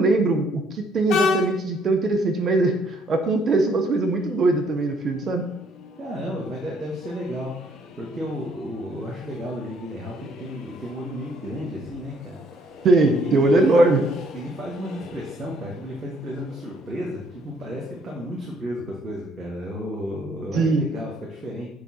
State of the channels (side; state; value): both; normal; correlation 0.66